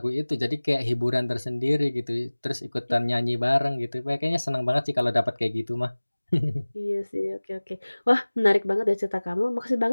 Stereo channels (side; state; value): both; inverted; correlation -1.00